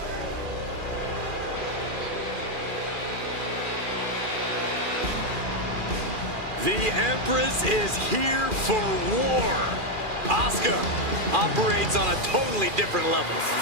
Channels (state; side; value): late; left; 2.4 ms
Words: The Empress is here for war. Asuka operates on a totally different level.